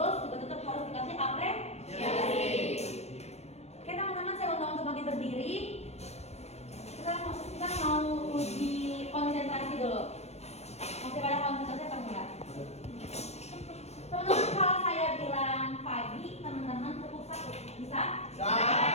juga tetap harus dikasih apresiasi. Oke teman-teman, saya undang untuk bagi berdiri. Kita mau uji konsentrasi dulu. Masih pada konsentrasi apa enggak? Teman-teman, kalau saya bilang pagi, teman-teman tepuk satu, bisa? Bisa.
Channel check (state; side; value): late; right; 0.31 ms